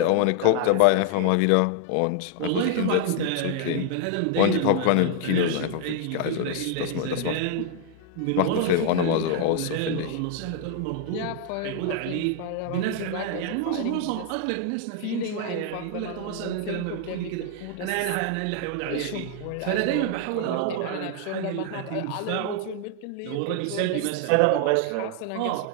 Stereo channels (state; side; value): different; both; correlation 0.00